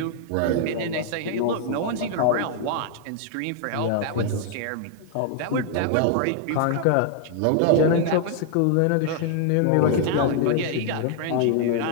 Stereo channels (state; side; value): different; both; correlation -0.01